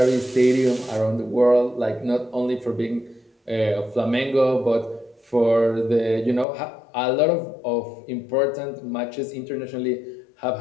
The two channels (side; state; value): right; drops out; at 6.5 s